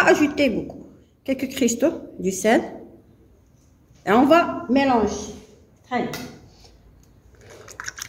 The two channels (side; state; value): both; identical; correlation 1.00